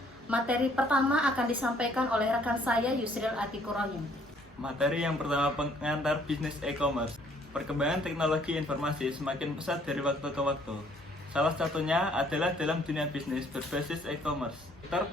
Materi pertama akan disampaikan oleh rekan saya Yusril Atikur Rahim. Materi yang pertama, pengantar bisnis e-commerce. Perkembangan teknologi informasi semakin pesat dari waktu ke waktu. Salah satunya adalah dalam dunia bisnis berbasis e-commerce. Sektor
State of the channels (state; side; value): normal; both; correlation 0.62